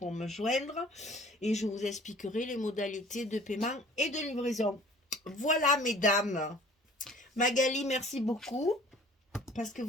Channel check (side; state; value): both; normal; correlation 0.50